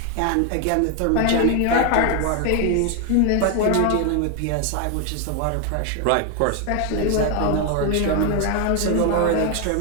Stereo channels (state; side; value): different; both; correlation 0.01